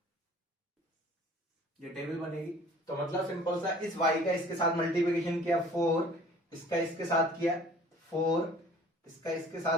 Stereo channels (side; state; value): both; normal; correlation 0.50